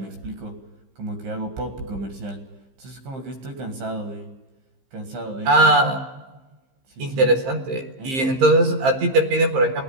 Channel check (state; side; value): late; left; 15 ms